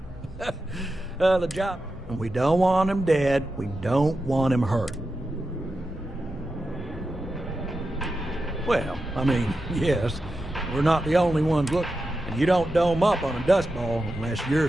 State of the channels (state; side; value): normal; both; correlation 0.90